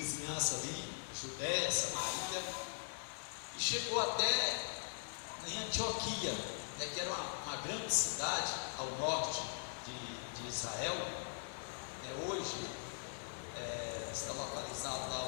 ali, Judéia, Samaria, e chegou até em Antioquia, né, que era uma grande cidade ao norte de Israel. Hoje está localizado lá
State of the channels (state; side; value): silent; right; 50 dB below the other